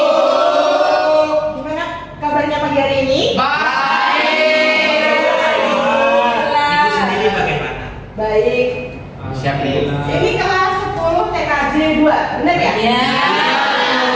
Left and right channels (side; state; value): both; identical; correlation 1.00